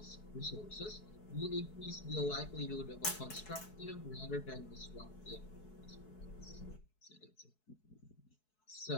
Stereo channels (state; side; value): late; right; 4.7 ms